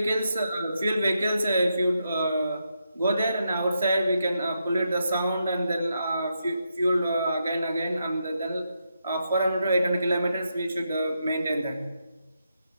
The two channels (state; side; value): inverted; both; correlation -0.83